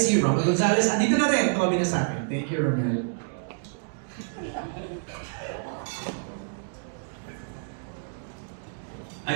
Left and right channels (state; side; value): silent; left; digital silence